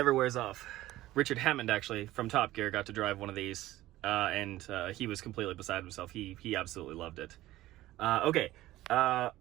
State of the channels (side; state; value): left; quieter; 16.0 dB